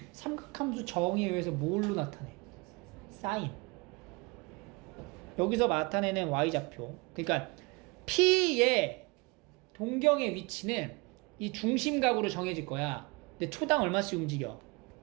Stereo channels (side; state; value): left; quieter; 27.1 dB